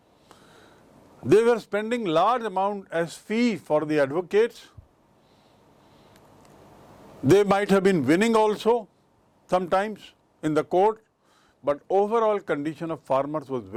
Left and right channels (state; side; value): identical; both; correlation 1.00